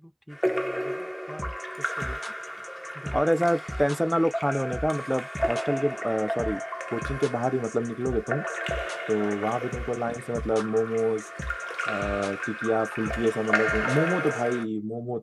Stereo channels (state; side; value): identical; both; correlation 1.00